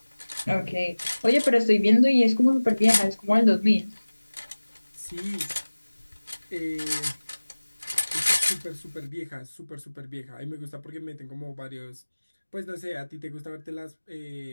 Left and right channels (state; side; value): inverted; both; correlation -1.00